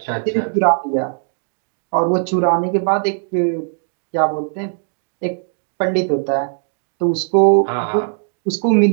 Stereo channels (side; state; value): left; silent; digital silence